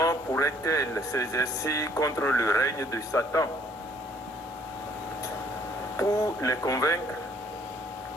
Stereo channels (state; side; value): normal; both; correlation 0.62